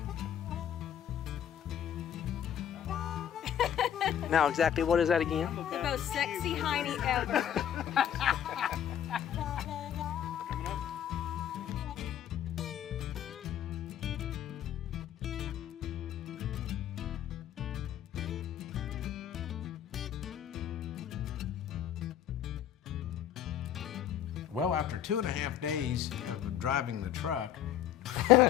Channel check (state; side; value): quieter; right; 10.1 dB